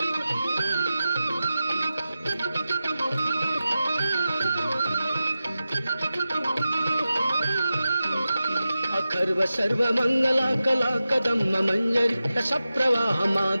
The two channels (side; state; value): both; inverted; correlation -0.93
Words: अखर्व सर्व मंगला कला कदम्म मंजरी रस प्रवाह